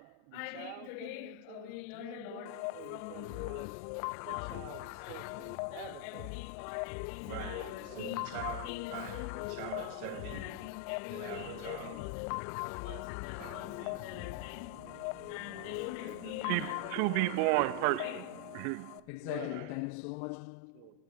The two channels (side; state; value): both; different; correlation 0.00